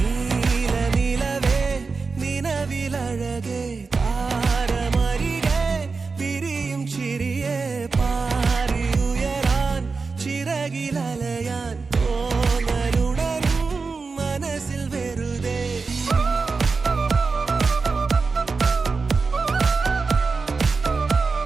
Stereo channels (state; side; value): quieter; left; 4.5 dB